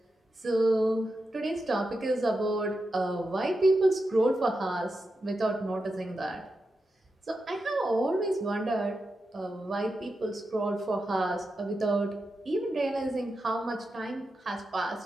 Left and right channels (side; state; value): both; normal; correlation 0.89